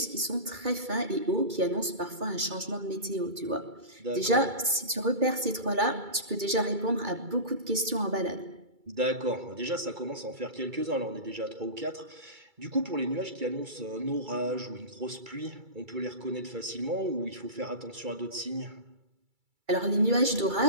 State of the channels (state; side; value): late; left; 2.3 ms